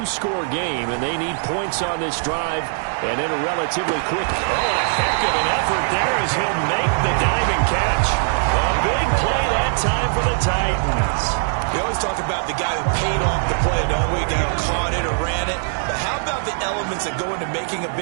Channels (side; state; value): left; silent; digital silence